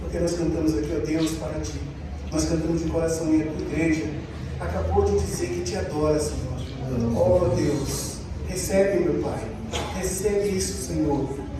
nós cantamos aqui, ó Deus, para ti. Nós cantamos de coração e a tua igreja acabou de dizer que te adora, Senhor. Ó Deus, recebe, meu Pai. Recebe isso, Senhor.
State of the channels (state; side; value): identical; both; correlation 1.00